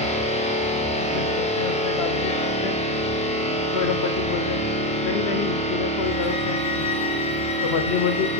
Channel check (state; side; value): normal; both; correlation 0.12